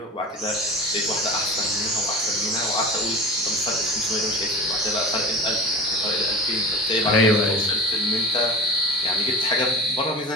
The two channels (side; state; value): both; normal; correlation 0.32